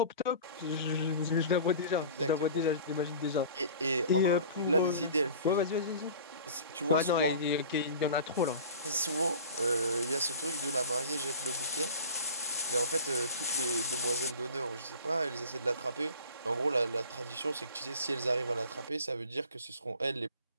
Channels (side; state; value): both; inverted; correlation -0.40